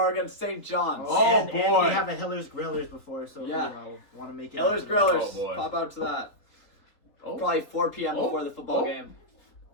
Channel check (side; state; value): right; late; 4.0 ms